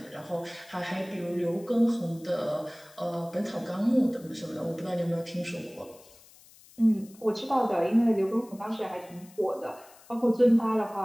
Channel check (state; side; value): noise; left; hiss, 24 dB below the sound